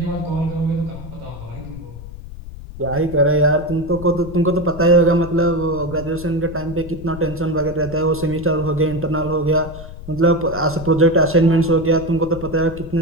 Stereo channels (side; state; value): left; noise; rumble, 13 dB below the sound